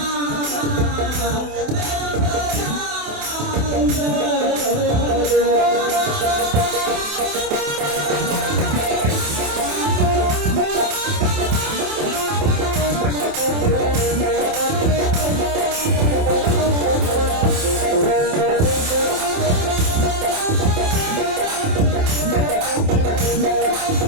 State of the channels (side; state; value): left; late; 27 ms